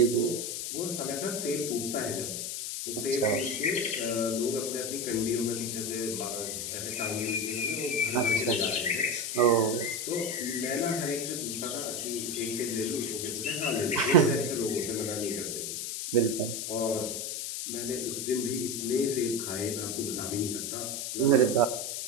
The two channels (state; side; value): noise; left; hiss, 4 dB below the sound